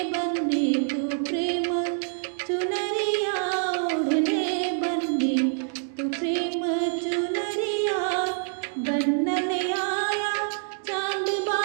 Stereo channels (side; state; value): left; silent; digital silence